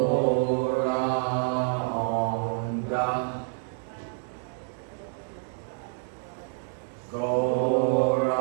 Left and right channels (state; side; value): silent; left; digital silence